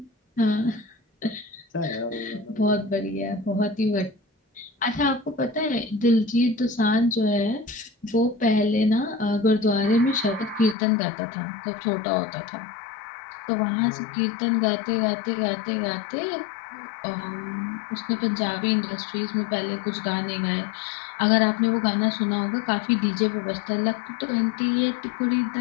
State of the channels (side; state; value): right; drops out; at 10.8 s